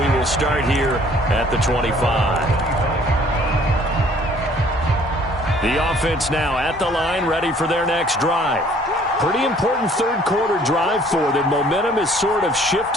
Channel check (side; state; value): both; normal; correlation 0.57